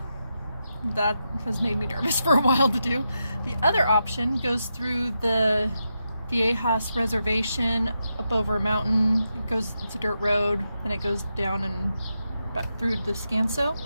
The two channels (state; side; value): inverted; both; correlation -0.86